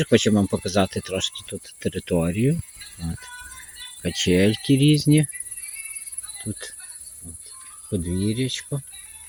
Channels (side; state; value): both; identical; correlation 1.00